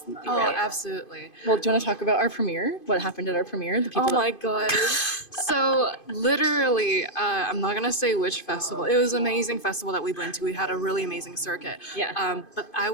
Oh, absolutely. Well, do you want to talk about our premiere? What happened at our premiere? The people. Oh my god. So literally, I'm not gonna say which festival. It was an amazing festival that we went to. We had a really amazing circuit. Yeah. But I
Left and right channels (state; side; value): late; right; 2.5 ms